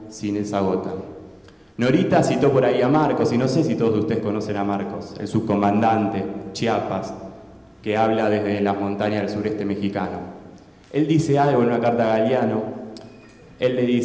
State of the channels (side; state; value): both; identical; correlation 1.00